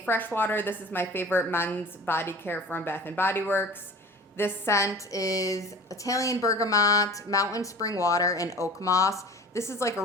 freshwater. This is my favorite men's body care from Bath & Body Works. This scent is Italian bergamot, mountain spring water, and oak moss. This is like a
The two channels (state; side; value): normal; both; correlation 0.41